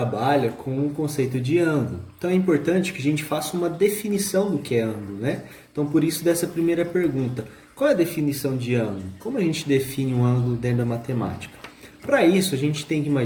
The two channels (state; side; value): identical; both; correlation 1.00